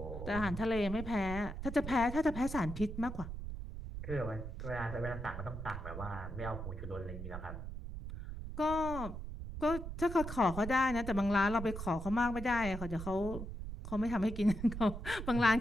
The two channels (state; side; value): noise; right; rumble, 7 dB below the sound